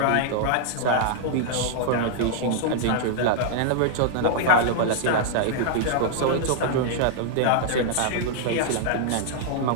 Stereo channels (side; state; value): both; different; correlation -0.01